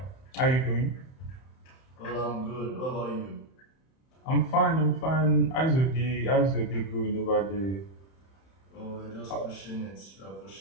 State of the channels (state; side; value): late; right; 31 ms